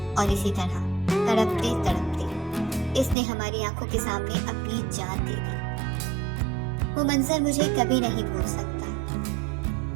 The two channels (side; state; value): left; drops out; at 3.2 s